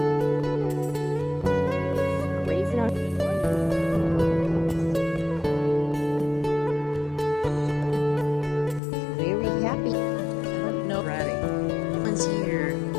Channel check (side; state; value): right; drops out; at 8.8 s